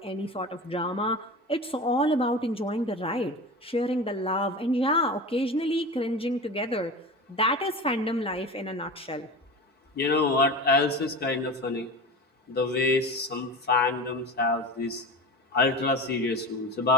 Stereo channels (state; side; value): normal; both; correlation 0.29